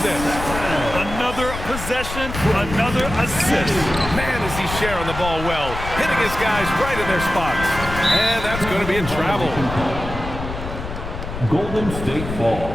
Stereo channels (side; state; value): left; noise; rumble, 8 dB below the sound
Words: Another possession, another assist. Man, is he sharing the ball well. Hitting his guys right in their spots. And that's going to be a travel. Golden State ball.